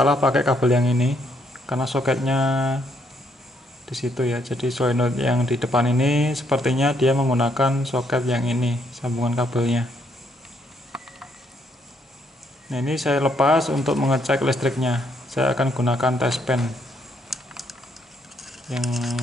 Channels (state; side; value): normal; both; correlation 0.72